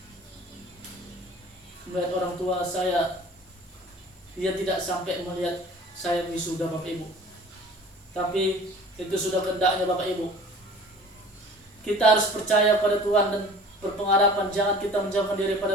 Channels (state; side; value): normal; both; correlation 0.45